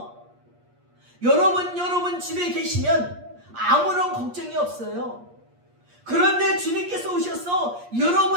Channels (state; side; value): late; left; 8.5 ms